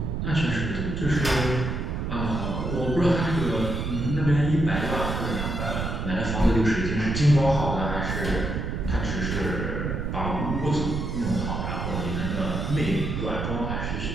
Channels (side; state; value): right; noise; rumble, 2 dB below the sound